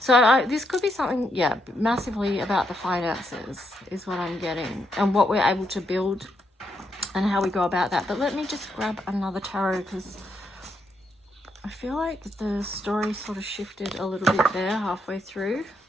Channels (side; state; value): both; normal; correlation 0.78